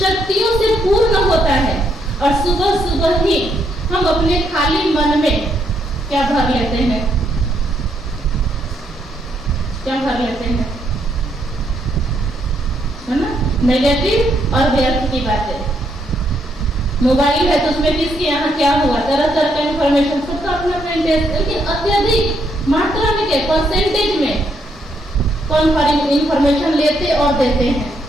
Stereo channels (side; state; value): both; normal; correlation 0.75